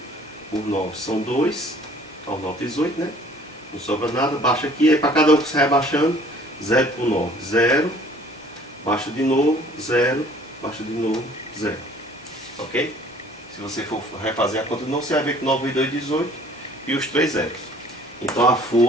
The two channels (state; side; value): normal; both; correlation 0.53